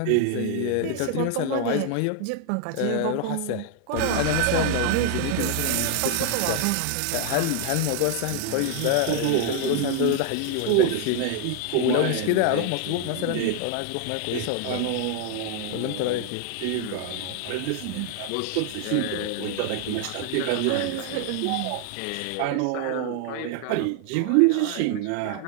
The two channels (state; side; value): different; both; correlation 0.00